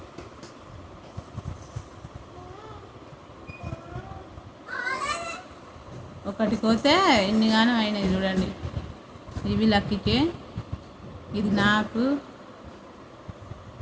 ఒకటి పోతే ఎన్నిగానో అయినాయి చూడండి. ఇవి లక్కీకే, ఇది నాకు,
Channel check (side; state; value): both; identical; correlation 1.00